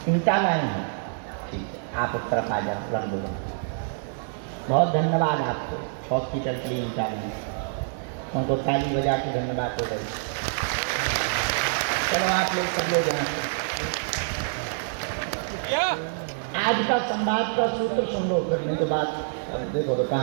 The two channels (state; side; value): silent; left; digital silence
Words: ईंटा लाए हैं, ठीक है, आप उस तरफ आ जाओ, रख दो। बहुत धन्यवाद आपको, हॉस्पिटल के लिए ईंटा लाए, उनको ताली बजा के धन्यवाद हो गई। चलो आप लोग सब लोग यहाँ से आज का संवाद का सूत्र सुन लो, करने के बाद देखो तो